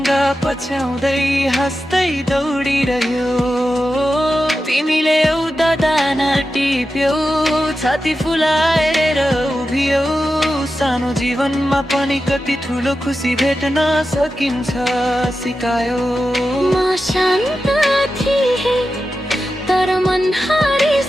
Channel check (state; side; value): normal; both; correlation 0.91